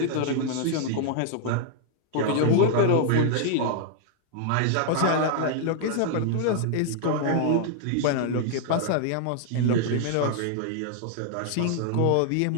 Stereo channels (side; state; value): both; different; correlation -0.01